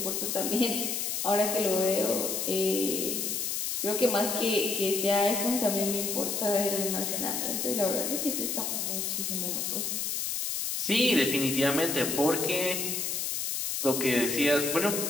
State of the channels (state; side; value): noise; left; hiss, 1 dB below the sound